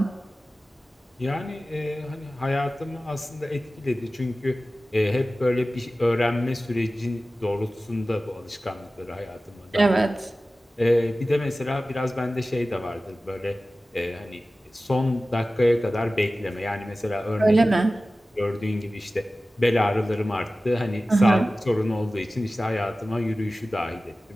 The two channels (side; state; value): both; normal; correlation 0.96